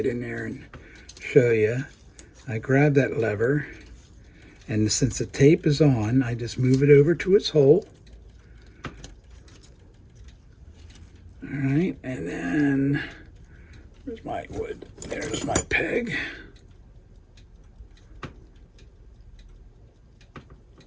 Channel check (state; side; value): identical; both; correlation 1.00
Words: in there and show you. I grab that lever, and since the tape is on, I just move it over to its hole. All right, and then where's my wood? There's my peg.